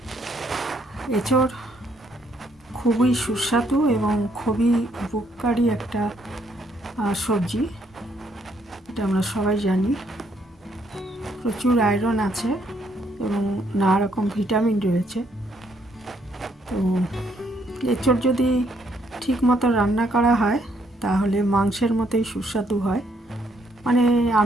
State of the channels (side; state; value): both; normal; correlation 0.70